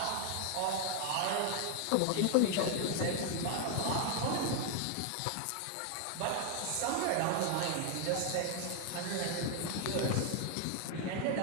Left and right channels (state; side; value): different; both; correlation 0.00